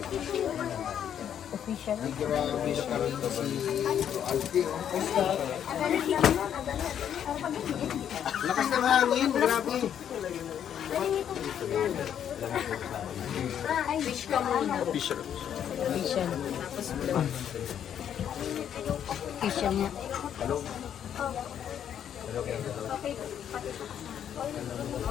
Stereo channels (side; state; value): right; quieter; 9.3 dB